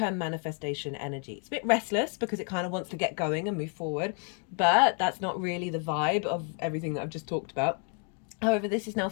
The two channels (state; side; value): quieter; right; 38.7 dB